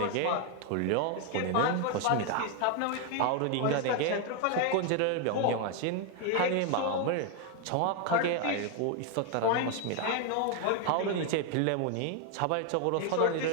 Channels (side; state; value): both; different; correlation 0.01